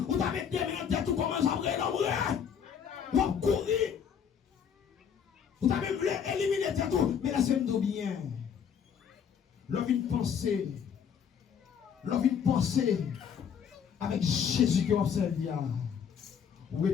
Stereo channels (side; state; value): right; quieter; 7.6 dB